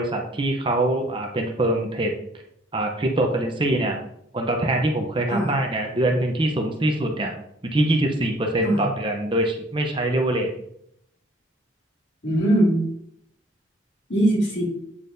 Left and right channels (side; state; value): both; normal; correlation 0.58